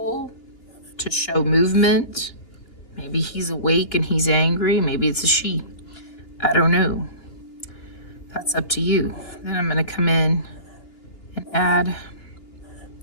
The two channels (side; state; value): right; late; 2.8 ms